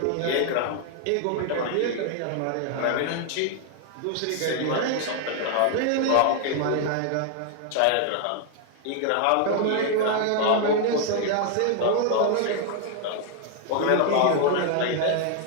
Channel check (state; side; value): different; both; correlation 0.00